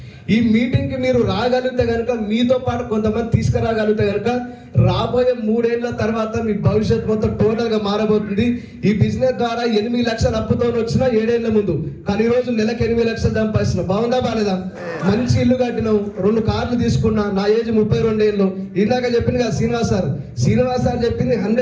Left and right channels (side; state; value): both; identical; correlation 1.00